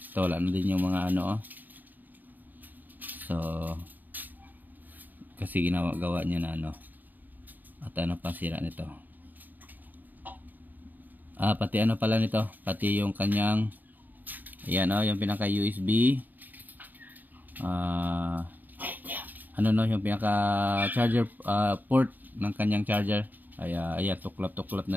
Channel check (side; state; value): left; late; 0.087 ms